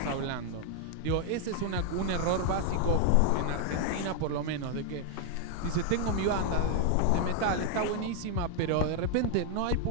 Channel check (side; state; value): both; different; correlation 0.00